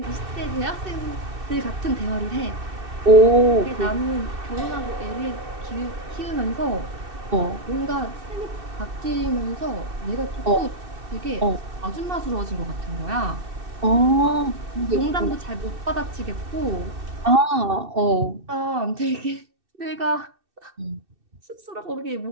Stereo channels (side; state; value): left; late; 2.6 ms